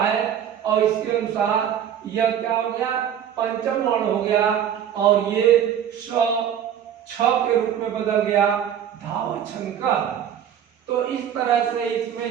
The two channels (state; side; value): quieter; left; 9.4 dB